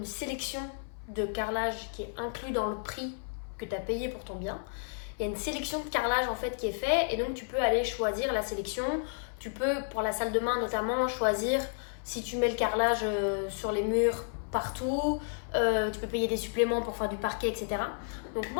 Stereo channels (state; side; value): silent; right; 57 dB below the other